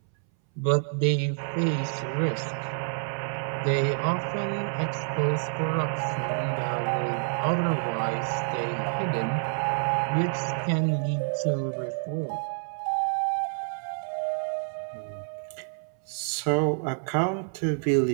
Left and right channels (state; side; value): silent; left; 59 dB below the other